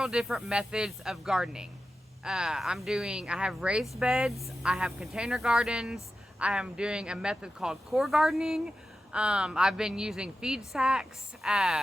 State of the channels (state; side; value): normal; both; correlation 0.92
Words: different methods of gardening. I have raised beds, I have container gardens, I am doing a method called core gardening. I've been using feed sacks,